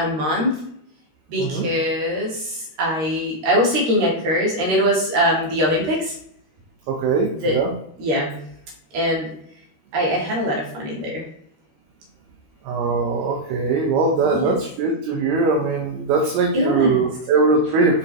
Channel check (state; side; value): late; left; 13 ms